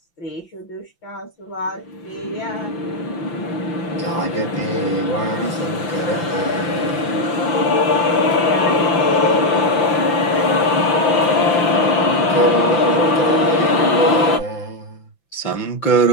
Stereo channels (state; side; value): late; right; 5.9 ms